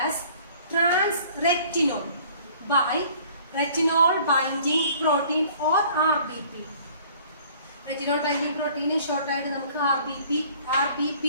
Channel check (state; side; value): inverted; both; correlation -0.53